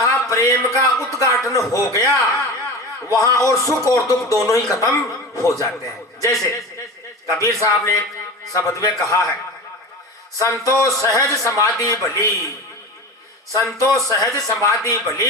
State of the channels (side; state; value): both; normal; correlation 0.30